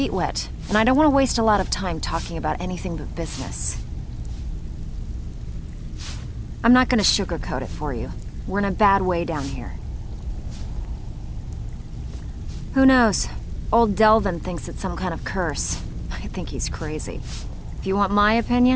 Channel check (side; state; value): both; identical; correlation 1.00